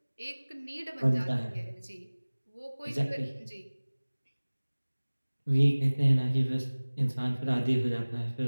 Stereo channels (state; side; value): inverted; both; correlation -1.00